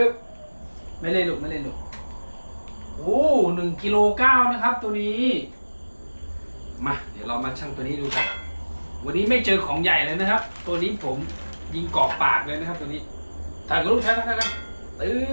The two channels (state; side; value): inverted; both; correlation -1.00